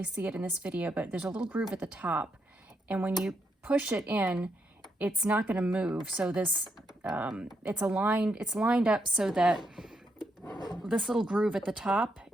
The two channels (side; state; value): both; normal; correlation 0.79